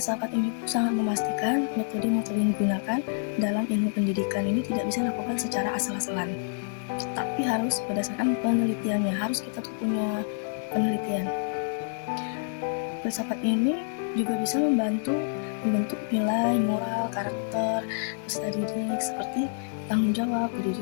ini sangat memastikan metode-metode yang digunakan dalam ilmu pendidikan ini tidak bisa dilakukan secara asal-asalan, tapi harus berdasarkan penelitiannya, harus kita tuh punya penelitian. Filsafat ini juga bisa membantu membentuk nilai, moral, karakter peserta didik seperti tanggung jawab,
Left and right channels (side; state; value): right; silent; digital silence